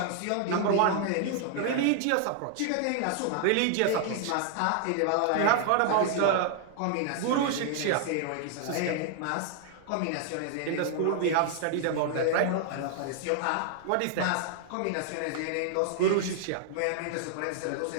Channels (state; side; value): different; both; correlation 0.00